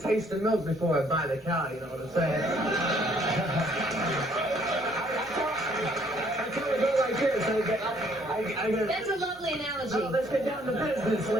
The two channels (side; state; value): both; normal; correlation 0.63